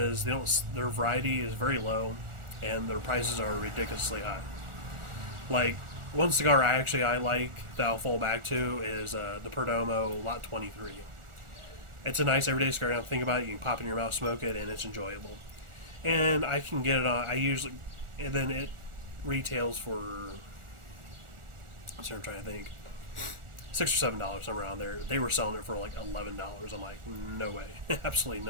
their variety is very low, and their prices are ridiculously high. Like, one cigar I like that I'll fall back to is the Perdomo Lot 23. It's a nice everyday cigar. Now think about it, you can pop it in your mouth, smoke it, and it's enjoyable. And I can get it on. And then it retails for. I'm trying to think. $6 or $7 somewhere around there. They were selling it for like $11. I'm like, no way, absolutely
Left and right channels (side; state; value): left; late; 1.4 ms